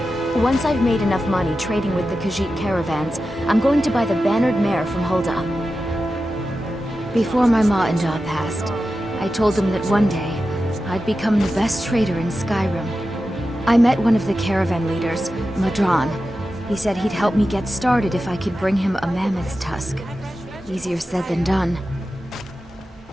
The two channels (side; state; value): both; normal; correlation 0.92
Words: Once I've made enough money trading with the Khajiit caravans, I'm going to buy the Bannered Mare from Hulda. Before my ma and Da passed, I told them that one day, I'd become the best trader in Skyrim. I met one of the caravan leaders, Madran. He said he'd help me get started if I could bring him a mammoth's tusk. Easier said than done.